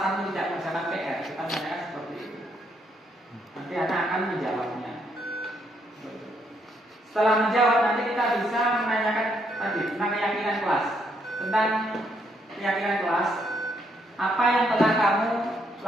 tidak mengerjakan PR? Kita tanyakan seperti itu. Nanti anak akan menjawabnya. Setelah menjawab, nanti kita bisa menanyakan tadi tentang keyakinan kelas. Tentang keyakinan kelas, apa yang telah kamu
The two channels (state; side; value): normal; both; correlation 0.74